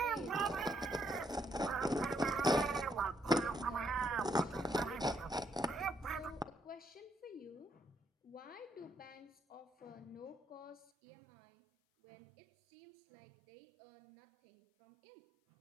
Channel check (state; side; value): drops out; left; at 10.9 s